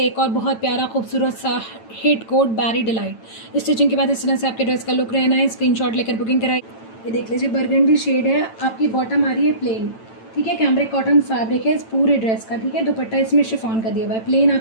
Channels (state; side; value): late; right; 9.0 ms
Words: एक और बहुत प्यारा खूबसूरत सा हिट कोट बैरी डिलाइट। स्टिचिंग के बाद इस तरह से आपके ड्रेस का लुक रहना है। स्क्रीनशॉट लेकर बुकिंग कराइए। ये देख लीजिए बरगंडी शेड है, आपकी बॉटम आ रही है प्लेन, ठीक है। कैमरिक कॉटन फैब्रिक है इस पूरे ड्रेस का, ठीक है। दुपट्टा इसमें शिफॉन का दिया हुआ है, प्लेन